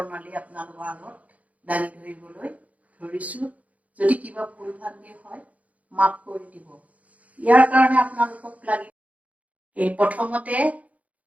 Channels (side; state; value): left; late; 0.070 ms